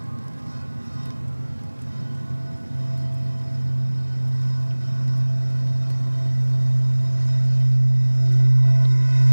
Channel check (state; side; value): inverted; both; correlation -1.00